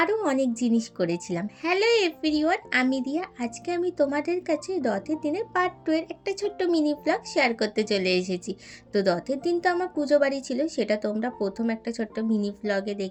অনেক জিনিস করেছিলাম। হ্যালো এভরিওয়ান, আমি রিয়া। আজকে আমি তোমাদের কাছে রথের দিনের পার্ট 2 এর একটা ছোট্ট মিনি ব্লগ শেয়ার করতে চলে এসেছি। তো রথের দিন তো আমার পুজো বাড়ি ছিল, সেটা তোমরা প্রথম একটা ছোট্ট মিনি ব্লগে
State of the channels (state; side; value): identical; both; correlation 1.00